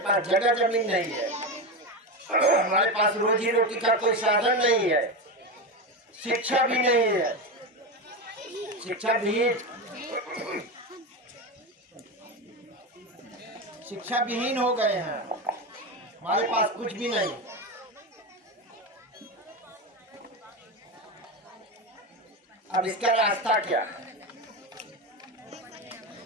पास जगह जमीन नहीं है, हमारे पास रोजी रोटी का कोई साधन नहीं है, शिक्षा भी नहीं है। शिक्षा विहीन हो गए हैं, हमारे पास कुछ भी नहीं। अब इसका रास्ता क्या?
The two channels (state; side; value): normal; both; correlation 0.17